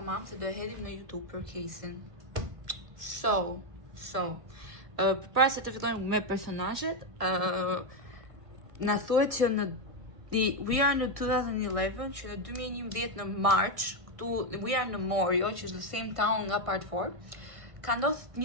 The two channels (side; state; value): left; late; 1.5 ms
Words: se do e hedhim në YouTube për casein. Përpara se të fillojmë me personazhet, na thuhet që we are në 2011, që në 2011 në March, këtu we are në Morio, që është the same town nga part 4. Ka ndodhur